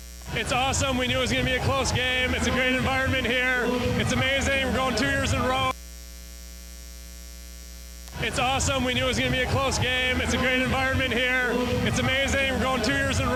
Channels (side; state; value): both; identical; correlation 1.00